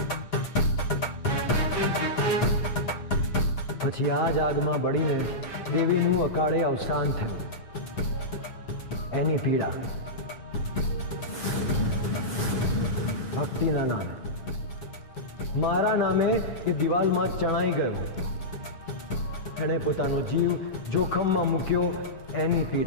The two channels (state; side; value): late; right; 7.8 ms